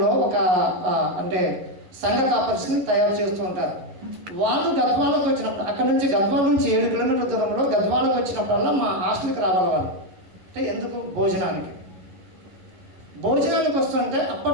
ఒక అంటే సంఘ కాపర్స్ని తయారు చేస్తూ ఉంటారు. వాళ్ళు గద్వాలకు వచ్చినప్పుడు అక్కడ నుంచి గద్వాల నుంచి 7 కిలోమీటర్ల దూరంలో గద్వాలకు వచ్చినప్పుడల్లా మా హాస్టల్కి రావాలి వాళ్ళు. అంటే ఎందుకు భోజనానికి వస్తుంటే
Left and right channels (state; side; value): late; left; 11 ms